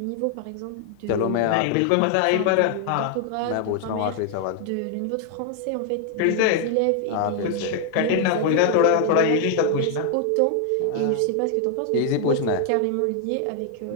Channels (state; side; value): different; both; correlation 0.00